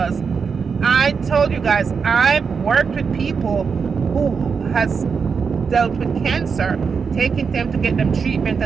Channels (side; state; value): left; quieter; 5.7 dB